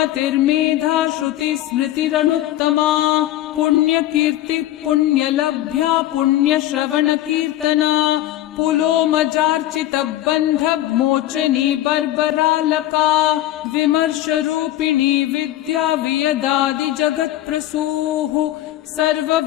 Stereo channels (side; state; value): right; quieter; 14.0 dB